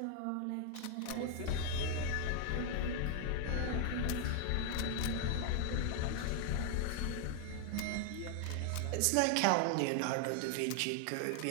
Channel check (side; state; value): both; different; correlation 0.00